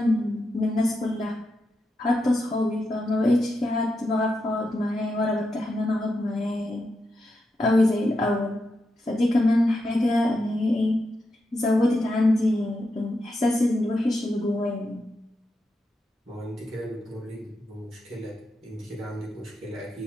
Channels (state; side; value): normal; both; correlation 0.86